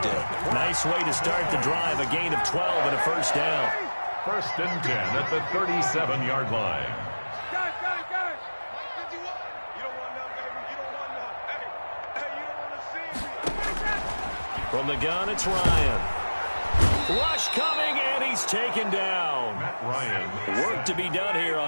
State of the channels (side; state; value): both; inverted; correlation -1.00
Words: Nice way to start the drive. A gain of 12 and a first down. 1st and 10 at the 37-yard line. From the gun, it's Ryan. Rush coming, and he's taken down. Matt Ryan. Work to be done here